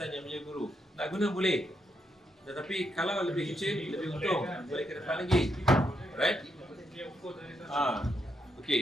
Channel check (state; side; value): normal; both; correlation 0.80